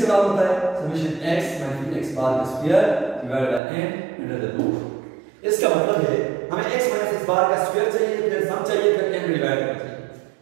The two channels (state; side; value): drops out; left; at 3.6 s